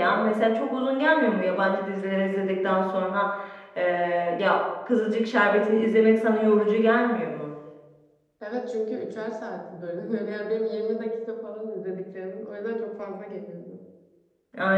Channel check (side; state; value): both; identical; correlation 1.00